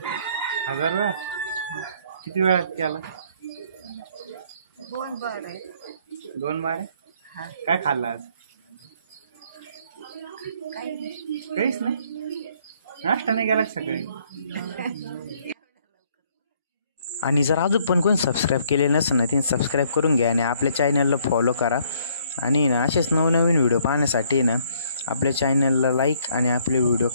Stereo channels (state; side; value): inverted; both; correlation -0.64